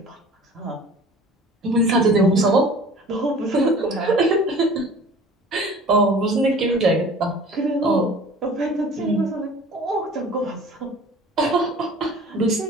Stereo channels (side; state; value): both; normal; correlation 0.45